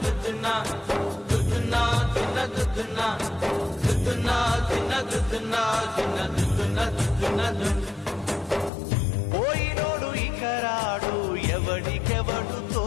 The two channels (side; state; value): right; drops out; at 8.7 s